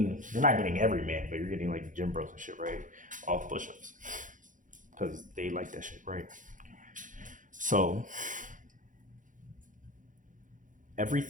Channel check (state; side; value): late; left; 0.38 ms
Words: not getting every man, but you're getting like gym bros and shit, right? All push-ups. Because they like that shit, right? So